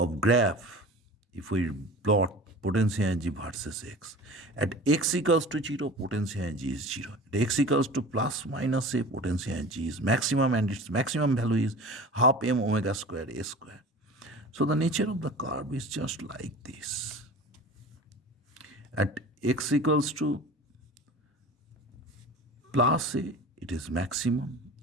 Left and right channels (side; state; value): both; normal; correlation 0.38